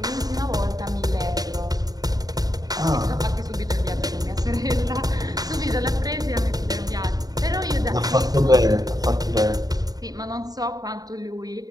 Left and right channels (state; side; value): late; left; 0.18 ms